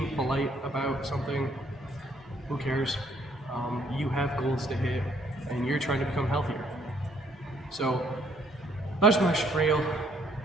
polite about something? Who cares? You have goals to hit, and you're trying to become healthier. So that's my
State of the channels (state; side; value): normal; both; correlation 0.66